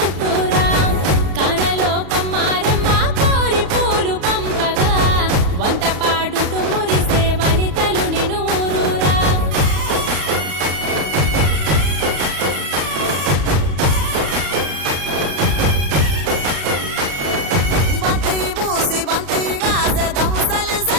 కానలో కొమ్మారమ్మ కోరి పూలు పంపగా వంత పాడుతూ మురిసే వనితలు నిన్ను ఊరూరా బంతి పూసి బంతిగా దముసలి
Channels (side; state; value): left; late; 35 ms